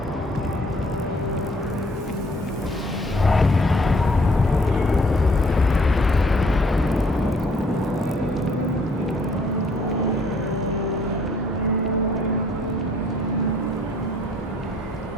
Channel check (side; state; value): both; normal; correlation 0.61